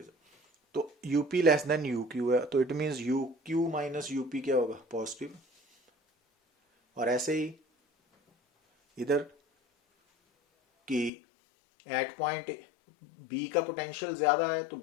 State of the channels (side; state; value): right; drops out; at 11.1 s